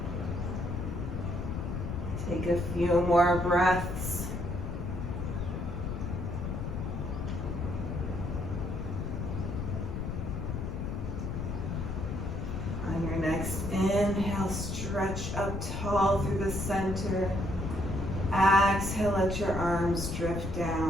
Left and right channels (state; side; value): noise; left; rumble, 4 dB below the sound